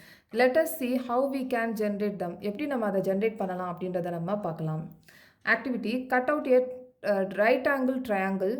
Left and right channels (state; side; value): identical; both; correlation 1.00